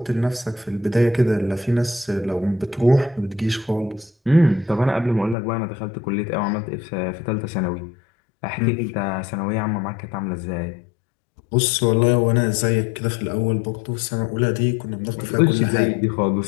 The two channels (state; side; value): drops out; right; at 5.4 s